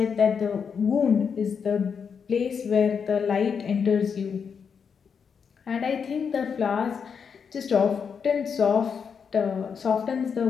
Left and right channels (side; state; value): right; quieter; 6.5 dB